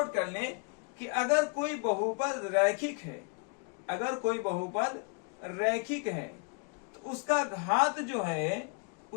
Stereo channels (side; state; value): right; quieter; 34.9 dB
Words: कर लें कि अगर कोई बहुपद रैखिक है, अगर कोई बहुपद रैखिक है तो उसका घात जो है